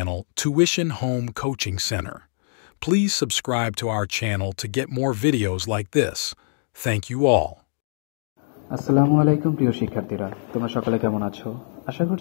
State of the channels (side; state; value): right; silent; 63 dB below the other